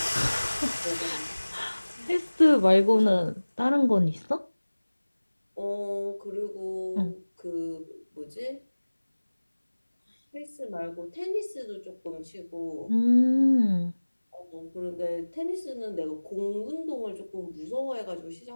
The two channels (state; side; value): inverted; both; correlation -1.00